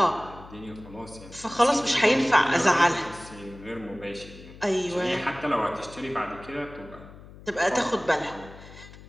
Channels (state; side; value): noise; left; hum, 18 dB below the sound